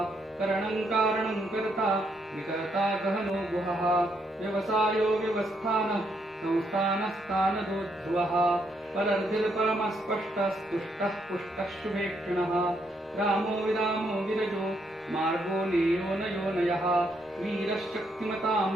करणं कारणं कर्ता विकर्ता गहनो गुहः व्यवसायो व्यवस्थानः संस्थानस्थानदो ध्रुवः परर्धिर्परमस्पष्टस्तुष्टः पुष्टः शुभेक्षणः रामो विरामो विरजो मार्गो नेयो नयोनयः वीरश्शक्तिमतां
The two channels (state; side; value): normal; both; correlation 0.75